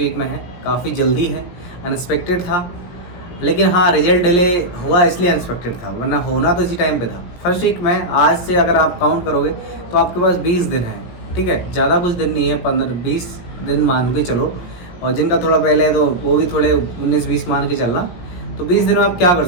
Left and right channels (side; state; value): right; late; 17 ms